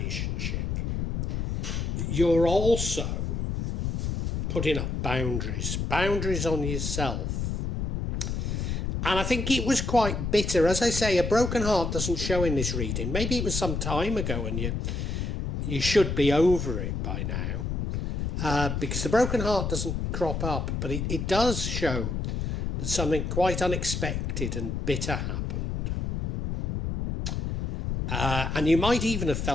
you're also putting up boundaries on yourself. And I think it was quite bitter. As I say, a broken heart doesn't show in this reading. Maybe it was some time ago and you should be over it by now. Because the broken heart doesn't crop up, but it does show that something quite unexpected and bitter happened. And you might even have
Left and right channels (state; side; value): noise; left; rumble, 2 dB below the sound